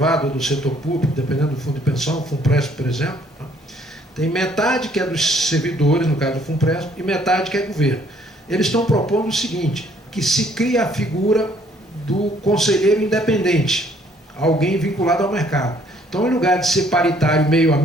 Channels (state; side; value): normal; both; correlation 0.63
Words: ou do setor público, dependendo do fundo de pensão, o FUNPRESP, por exemplo, né? Tem metade que é dos servidores, no caso do FUNPRESP, e metade que é governo. Eles estão propondo o seguinte: que se cria a figura do conselheiro independente, alguém vinculado ao mercado. Então, em lugar de ser paritário meio a